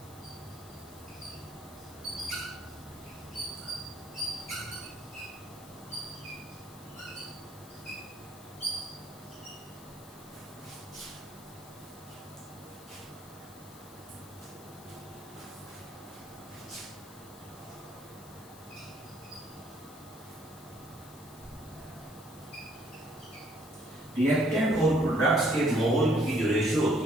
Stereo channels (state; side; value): noise; left; hiss, 19 dB below the sound